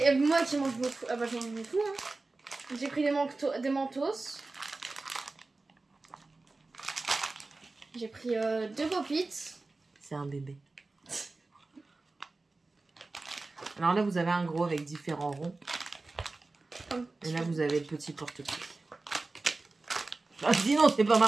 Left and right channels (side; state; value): left; quieter; 3.4 dB